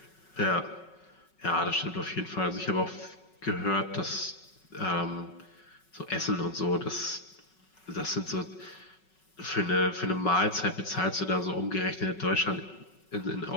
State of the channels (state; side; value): late; right; 5.4 ms